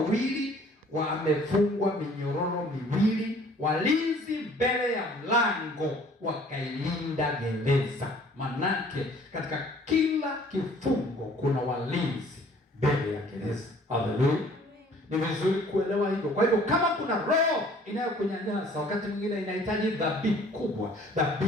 wamefungwa minyororo miwili. Walinzi mbele ya mlango wakailinda gereza. Manake katika kila kifungo kuna walinzi mbele ya gereza. Haleluya. Ni vizuri kuelewa hivyo. Kwa hivyo kama kuna roho inayokunyanyasa, wakati mwingine inahitaji dhabihu kubwa,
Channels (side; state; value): both; normal; correlation 0.55